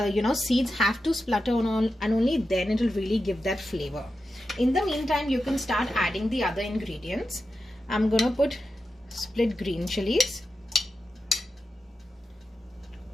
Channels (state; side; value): normal; both; correlation 0.90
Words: have to splutter and only then it will really give that flavor. In the meantime, you can start adding the other ingredients. I'm gonna put split green chilies.